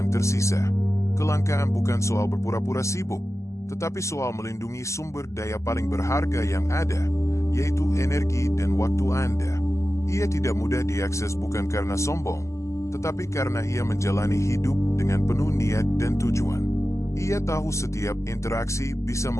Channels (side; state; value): right; late; 0.14 ms